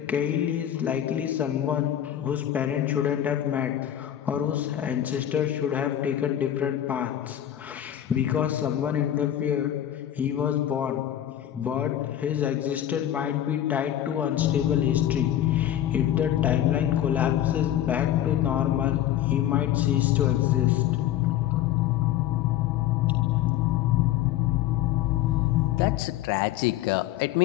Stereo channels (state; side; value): quieter; right; 11.6 dB